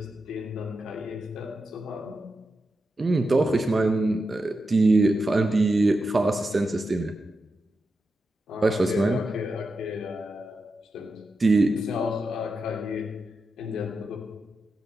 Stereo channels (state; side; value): normal; both; correlation 0.89